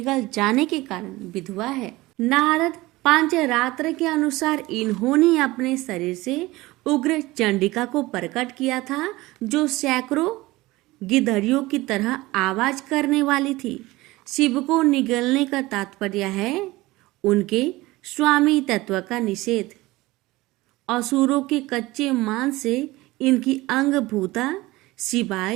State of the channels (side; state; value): left; quieter; 19.7 dB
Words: जाने के कारण विधवा है। नारद पांचरात्र के अनुसार इन्होंने अपने शरीर से उग्र चंडिका को प्रकट किया था, जो सैकड़ों गिद्धड़ियों की तरह आवाज करने वाली थी। शिव को निगलने का तात्पर्य है उनके स्वामी तत्व का निषेध। असुरों के कच्चे मांस से इनकी अंगभूता